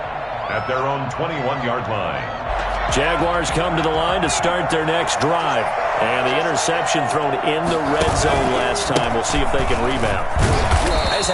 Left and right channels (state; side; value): identical; both; correlation 1.00